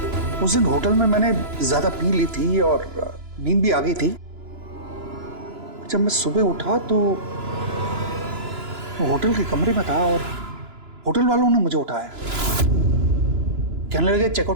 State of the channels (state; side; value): late; left; 2.9 ms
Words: उस दिन होटल में मैंने ज्यादा पी ली थी और नींद भी आ गई थी। जब मैं सुबह उठा तो होटल के कमरे में था और होटल वालों ने मुझे उठाया। कहने लगे